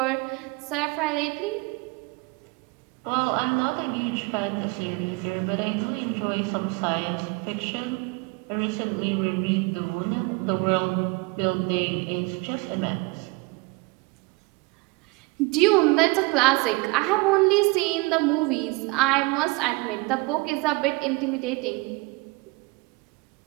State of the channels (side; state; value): left; quieter; 25.6 dB